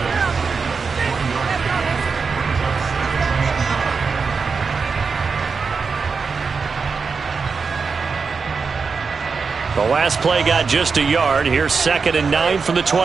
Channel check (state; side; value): quieter; left; 5.1 dB